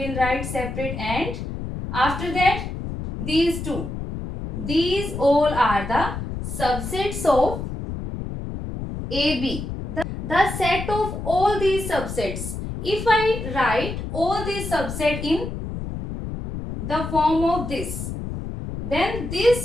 will write separate, and after that these two. These all are the subsets of AB. The set of all these subsets. If I write all these subsets in the form of this, then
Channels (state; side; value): noise; left; rumble, 6 dB below the sound